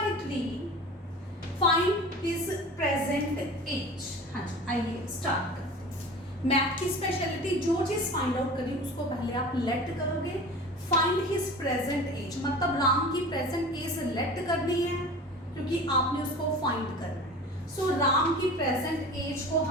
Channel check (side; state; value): both; normal; correlation 0.37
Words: Find his present age. हाँ जी, आइए स्टार्ट करते हैं। मैथ की स्पेशलिटी, जो चीज फाइंड आउट करी उसको पहले आप लेट करोगे। फाइंड हिज प्रेजेंट एज मतलब राम की प्रेजेंट एज लेट करनी है क्योंकि आपने उसको फाइंड करना है। सो राम की प्रेजेंट एज को